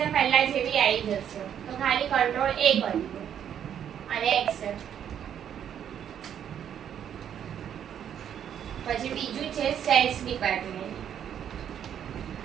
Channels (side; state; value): left; quieter; 9.3 dB